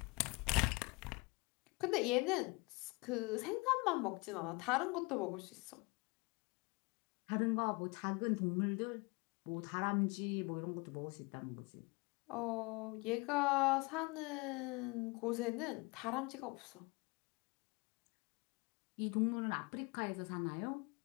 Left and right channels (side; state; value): right; quieter; 27.1 dB